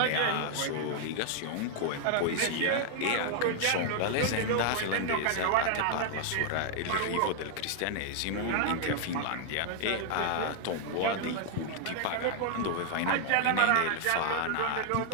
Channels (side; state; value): both; different; correlation 0.00